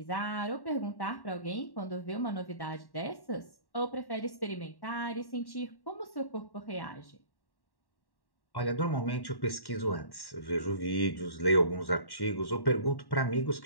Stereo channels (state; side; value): late; right; 1.1 ms